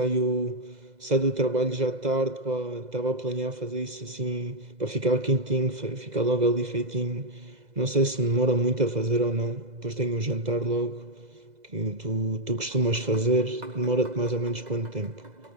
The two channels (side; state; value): left; late; 2.0 ms